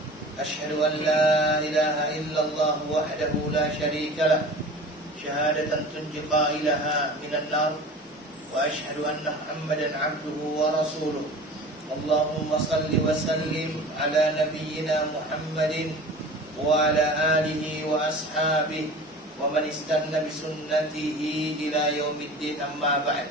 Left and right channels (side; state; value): both; normal; correlation 0.39